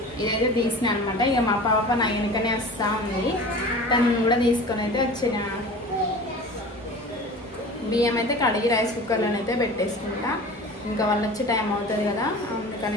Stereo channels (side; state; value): both; normal; correlation 0.38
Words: ఇదైతే తీసిన అనమాట. ఇక మా పాప నా వెనుకనే వస్తూ ఉంది, తను కూడా తీసుకొని అయితే వచ్చిన. బియ్యం అయితే కడిగి రైస్ కుక్కర్లోనైతే పెట్టేసుకుంటా. ఇంకా వాళ్ళు వచ్చే టైం అవుతుంది కదా,